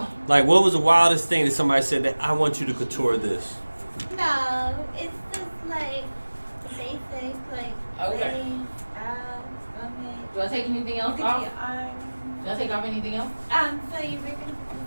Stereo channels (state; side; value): inverted; both; correlation -1.00